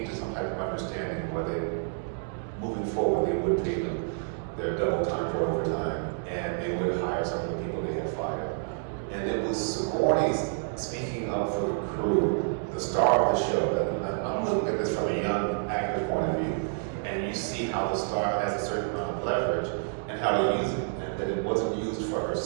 to some type of understanding where they, moving forward, they would pay them their double time for overtime, and they would hire some of the people they had fired. And it was Sigourney's speaking up for the crew, the star of the show. And I'm looking at this from a young actor's point of view, and you see how the star has a certain amount of leverage and how to use it, and that it wasn't used for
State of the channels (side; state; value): left; silent; digital silence